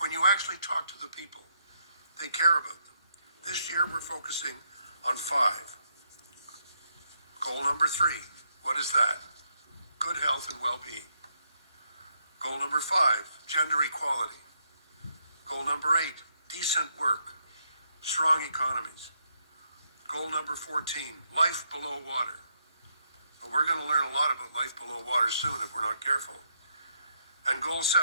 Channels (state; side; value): inverted; both; correlation -0.76